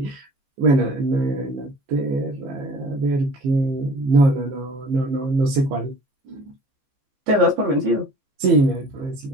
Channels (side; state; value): left; late; 15 ms